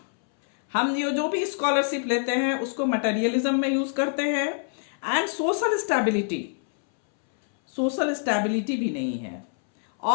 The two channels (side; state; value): right; silent; 61 dB below the other